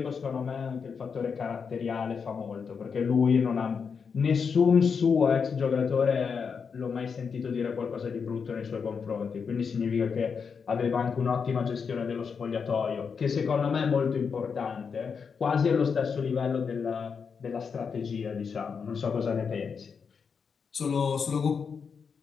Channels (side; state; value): right; quieter; 6.0 dB